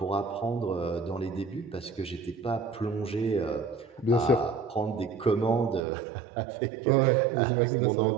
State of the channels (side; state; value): left; drops out; at 5.8 s